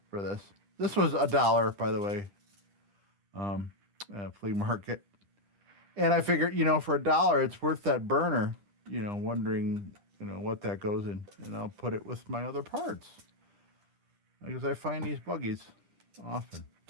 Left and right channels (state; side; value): late; left; 9.9 ms